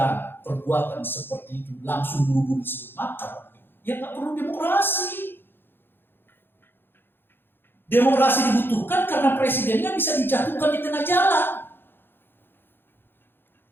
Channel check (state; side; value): late; right; 0.10 ms